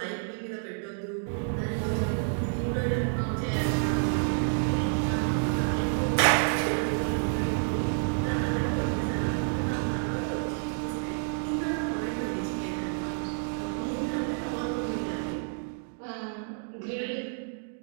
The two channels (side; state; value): left; silent; digital silence